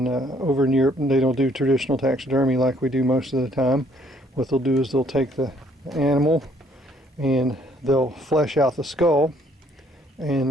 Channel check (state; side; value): normal; both; correlation 0.64